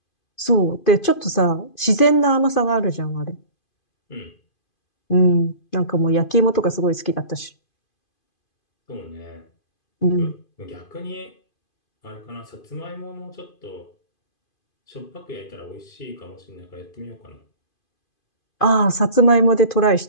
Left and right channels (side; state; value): right; late; 2.5 ms